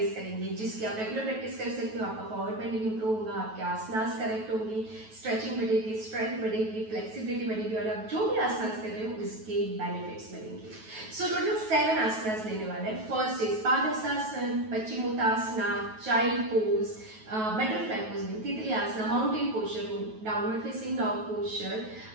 करेंगे, जिसकी आप रेगुलर प्रैक्टिस कर सकते हो। आपका फॉरवर्ड बेंडिंग इम्प्रूव होगा, आपके आसनास करेक्ट होंगे, स्ट्रेचिंग बढ़ेगी, स्ट्रेंथ बढ़ेगी, फ्लेक्सिबिलिटी बढ़ेगी और आप जो भी आसनास कर रहे हो उसके बेनिफिट्स मिलेंगे। सो टोटल 7 आसनास लेने वाले हैं। First is Padahastasana, Paschimottanasana, child pose, butterfly pose में तितली आसना, माउंटेन पोस्चर में downward facing dog posture,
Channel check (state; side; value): late; left; 9.2 ms